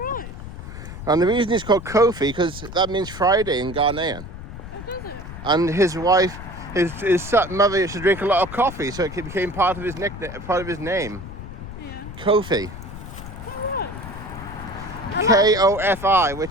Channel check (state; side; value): noise; left; rumble, 11 dB below the sound